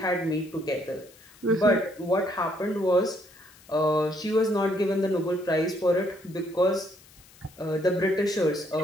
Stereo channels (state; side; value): noise; left; hiss, 25 dB below the sound